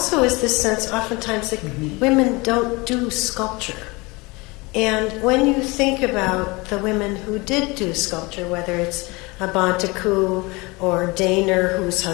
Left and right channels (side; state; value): right; quieter; 25.1 dB